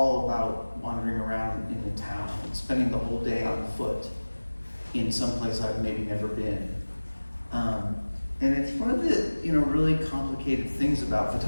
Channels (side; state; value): both; inverted; correlation -1.00